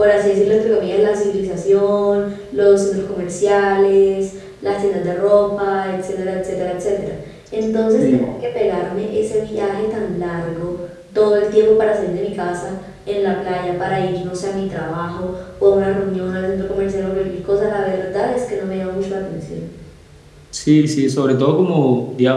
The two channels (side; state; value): both; identical; correlation 1.00